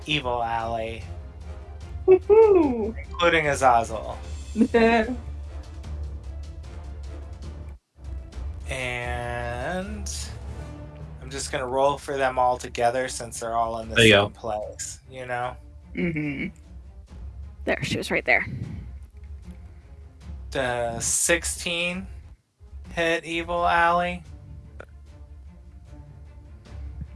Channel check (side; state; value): both; identical; correlation 1.00